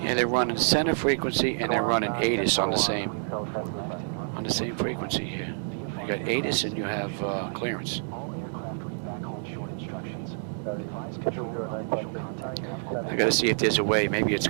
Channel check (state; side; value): silent; left; digital silence